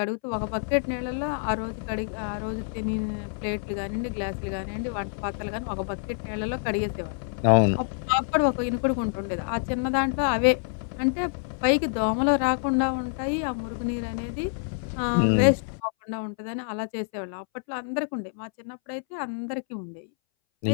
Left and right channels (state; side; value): silent; right; 60 dB below the other